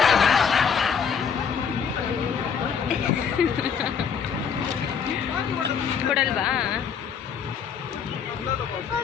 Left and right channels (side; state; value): right; quieter; 6.8 dB